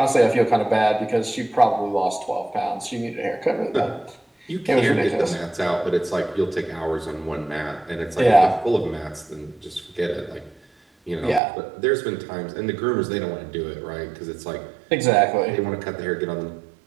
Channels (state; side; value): drops out; left; at 11.4 s